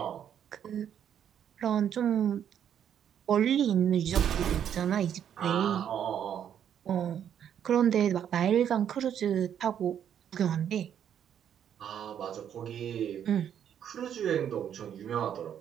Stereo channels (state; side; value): quieter; left; 9.2 dB